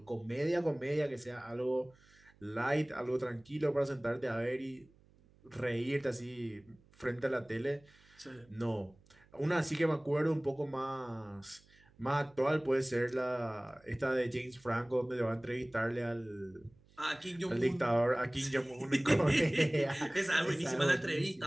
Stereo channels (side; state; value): right; noise; hum, 29 dB below the sound